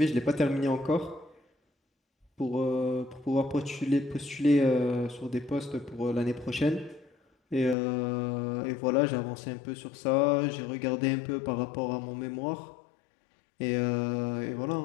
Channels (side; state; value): right; drops out; at 7.8 s